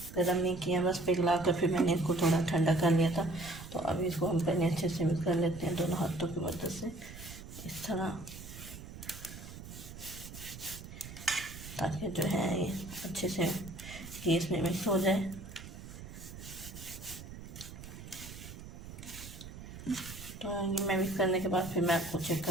गरम नहीं किया, बस पिघला कर फिर मैंने इसको थोड़ा ठंडा कर लिया था। तो अभी इसको हम पहले अच्छे से मिक्स कर लेते हैं दोनों हाथों की मदद से, इस तरह, ताकि जो है ये अच्छे से घी इसमें मिक्स हो जाए। तो ये मैं मिक्स करने के बाद फिर मैं आपको चेक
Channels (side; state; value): right; noise; rumble, 13 dB below the sound